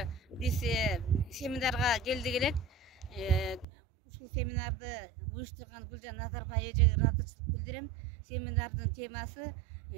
біз семинарға келдік елек. Ушул семинарды уюштурган Гүлжан Назарбай эжеге ыраазычылык билдирем. Семинардын темасы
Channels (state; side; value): drops out; left; at 3.7 s